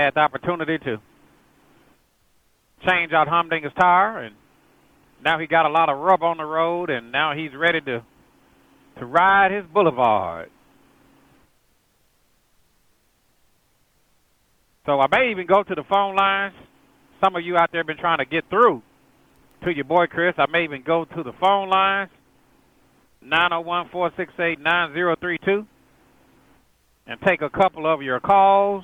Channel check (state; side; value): identical; both; correlation 1.00